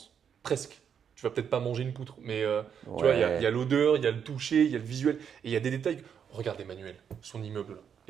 Presque. Tu vas peut-être pas manger une poutre, mais tu vois, il y a l'odeur, il y a le toucher, il y a le visuel, et il y a des détails. Regarde Emmanuel, son immeuble là.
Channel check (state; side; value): quieter; left; 7.8 dB